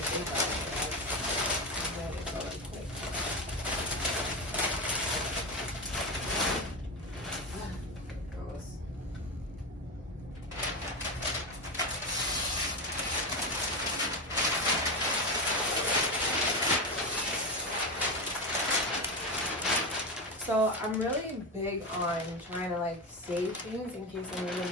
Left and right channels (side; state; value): both; normal; correlation 0.16